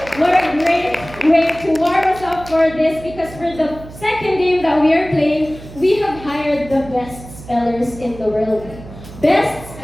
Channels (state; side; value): noise; right; hum, 16 dB below the sound